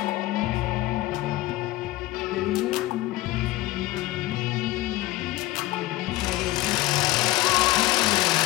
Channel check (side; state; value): right; quieter; 17.5 dB